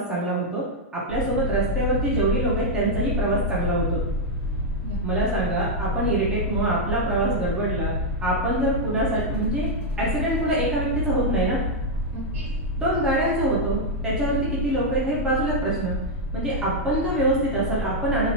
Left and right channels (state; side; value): normal; both; correlation -0.01